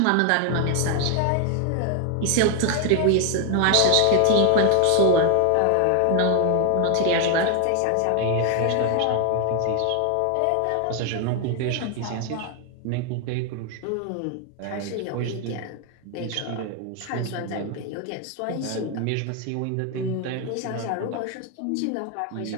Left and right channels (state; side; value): different; both; correlation 0.01